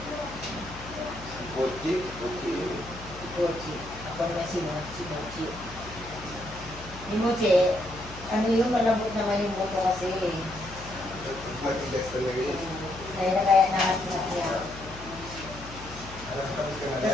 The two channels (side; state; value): left; noise; hum, 15 dB below the sound